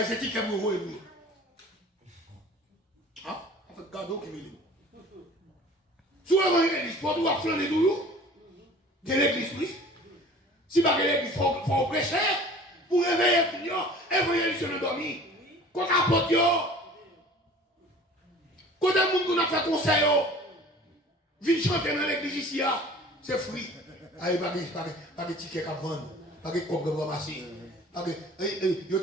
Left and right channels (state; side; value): normal; both; correlation 0.45